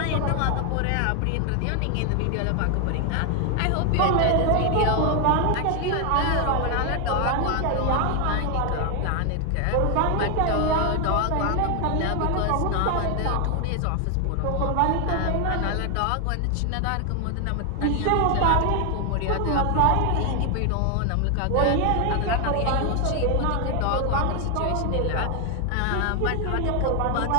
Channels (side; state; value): both; different; correlation 0.00